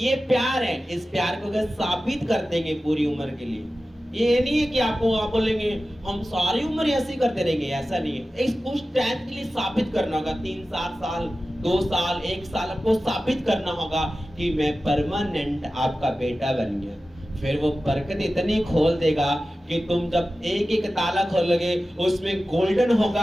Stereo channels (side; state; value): both; normal; correlation 0.95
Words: प्यार है, इस प्यार को अगर साबित कर देंगे पूरी उम्र के लिए, ये नहीं है कि आपको आप बोलेंगे हम सारी उम्र ऐसे ही करते रहेंगे, ऐसा नहीं है। इस कुछ टाइम के लिए साबित करना होगा, 3-4 साल, 2 साल, 1 साल आपको साबित करना होगा कि मैं परमानेंट आपका बेटा बन गया। फिर वो बरकत इतनी खोल देगा कि तुम जब एक ताला खोलोगे उसमें गोल्डन